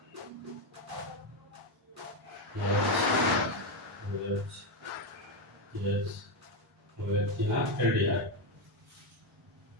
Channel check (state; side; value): normal; both; correlation 0.07